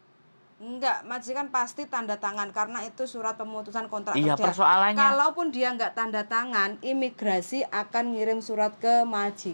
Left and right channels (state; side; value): inverted; both; correlation -1.00